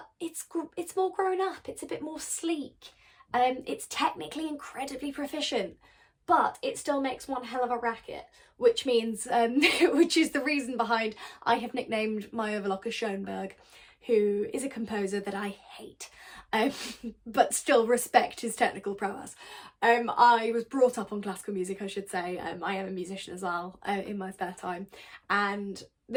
it's more grown up, it's a bit more sleek. It's technically incredibly proficient, but it still makes one hell of a racket, which means, which is the reason behind I have nicknamed my overlocker Schoenberg, who is a composer that I hate, but still respect his technical prowess. I was brought up on classical music, I should say. I am a musician as well, in my spare time, and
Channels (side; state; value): both; identical; correlation 1.00